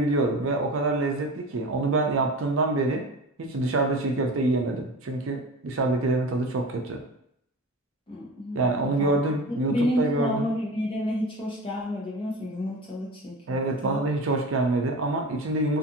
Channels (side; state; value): both; normal; correlation 0.32